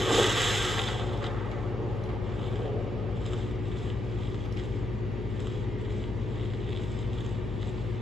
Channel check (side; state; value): left; noise; hum, 5 dB below the sound